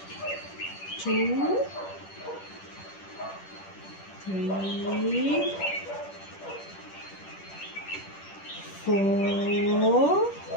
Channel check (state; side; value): late; right; 10 ms